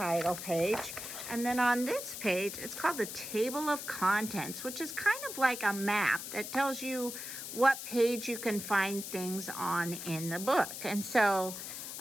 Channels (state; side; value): noise; left; hiss, 8 dB below the sound